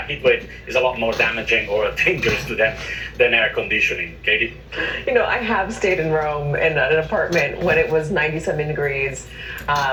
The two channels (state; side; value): identical; both; correlation 1.00